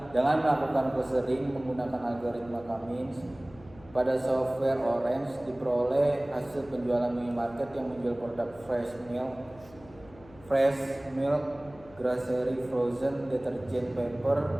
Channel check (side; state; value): left; noise; hum, 22 dB below the sound